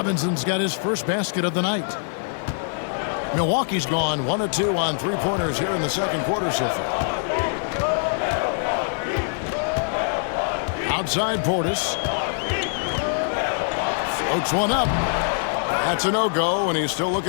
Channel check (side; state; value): right; silent; digital silence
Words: got his first basket of the night. Milwaukee's gone 1 of 2 on three-pointers here in the second quarter so far. Outside Portis. Floats one up. That's a no-go, and he's still